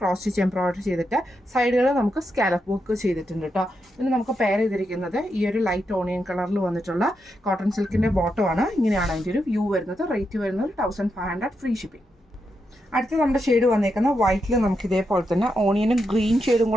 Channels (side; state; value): both; normal; correlation 0.84